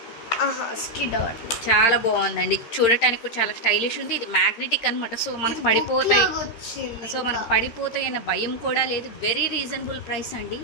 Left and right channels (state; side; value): late; right; 13 ms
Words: స్కిడ్ అవ్వట్లేదు. చాలా బాగుందండి. చూడటానికి కూడా చాలా స్టైలిష్ ఉంది. ఇది మ్యాగ్నెటిక్ అనమాట. సో మనకు పడిపోతాయి. అన్న భయం కూడా లేదు. వెరీ రీజనబుల్ ప్రైస్ అండి.